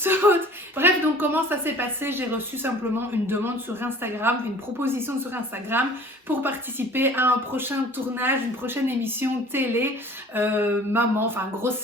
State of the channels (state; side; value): normal; both; correlation 0.48